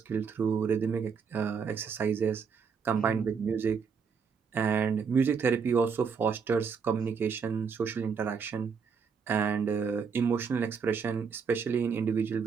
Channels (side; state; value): left; quieter; 6.0 dB